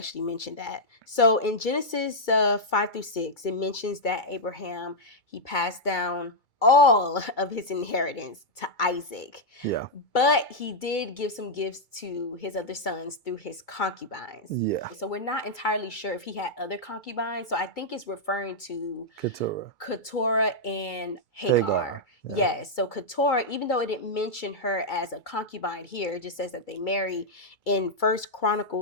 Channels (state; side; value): late; right; 2.3 ms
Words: mentioned that. So in Genesis 5-6, it mentions that Abraham, he passed down all of his inheritance to Isaac. Yeah. But he did give some gifts to his other sons through his concubines. Yeah. So we're not entirely sure if he had other concubines. So I think it's referring to Keturah and Hagar. Yeah. Yes. So Keturah, even though it didn't mention her as a concubine here, it just says that they married. In 1